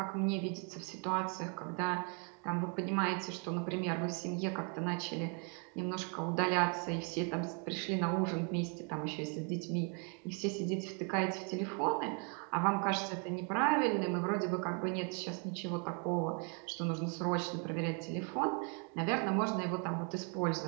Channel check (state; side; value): quieter; left; 37.8 dB